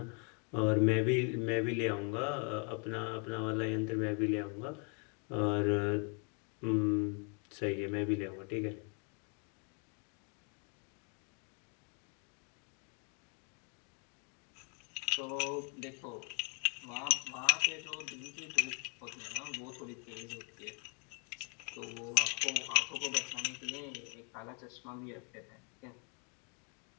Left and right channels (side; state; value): right; quieter; 37.3 dB